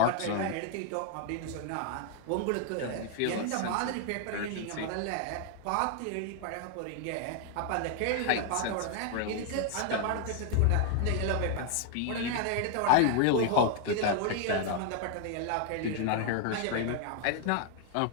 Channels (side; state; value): both; different; correlation 0.00